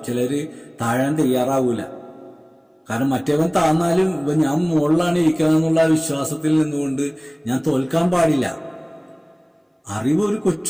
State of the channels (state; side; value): identical; both; correlation 1.00